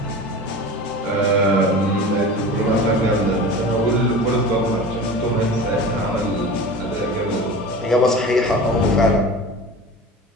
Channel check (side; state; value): both; normal; correlation 0.34